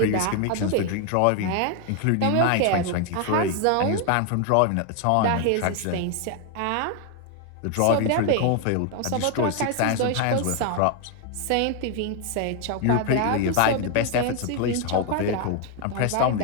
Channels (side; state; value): both; different; correlation 0.01